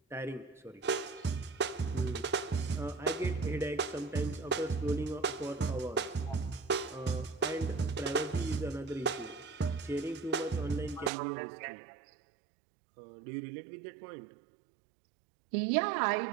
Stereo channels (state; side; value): drops out; left; at 11.1 s